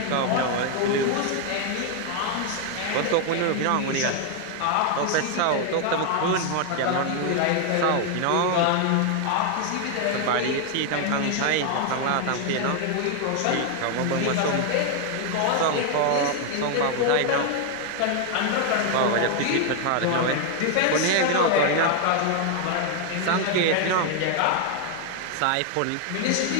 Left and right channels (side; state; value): both; different; correlation 0.01